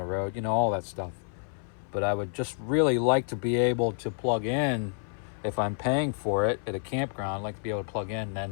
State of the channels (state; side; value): silent; right; 59 dB below the other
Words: road, all that stuff. But I would just really like to be able to plug in, if I'm paying for it at a campground, I'd like to be able to plug in,